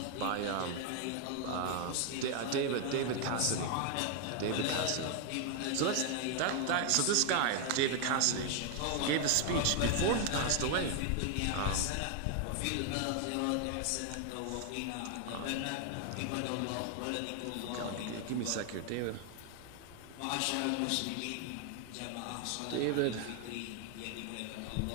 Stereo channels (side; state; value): both; different; correlation 0.00